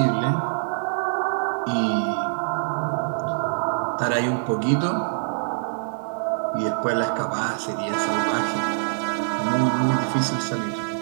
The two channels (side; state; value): left; silent; digital silence